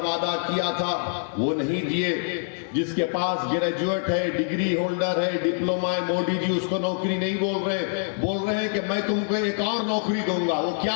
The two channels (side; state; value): right; silent; digital silence